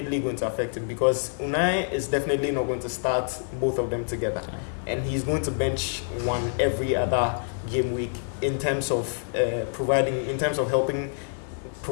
going to affect him because Unai is definitely not going to start both of them together. And he's going to bench one every other game week in terms of helping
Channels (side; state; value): right; silent; 56 dB below the other